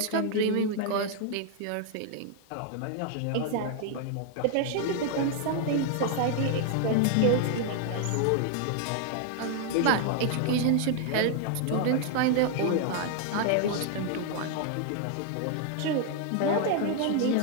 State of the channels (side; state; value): both; different; correlation 0.00